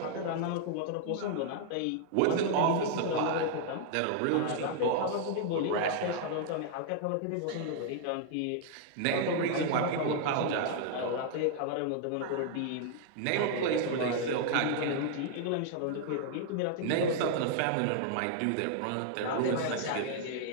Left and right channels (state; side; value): different; both; correlation -0.01